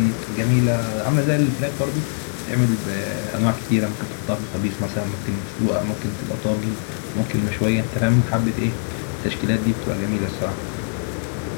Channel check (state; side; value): silent; right; 64 dB below the other